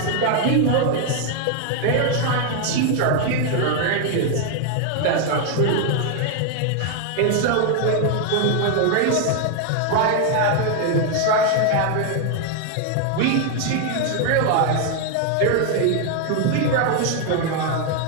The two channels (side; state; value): both; different; correlation 0.00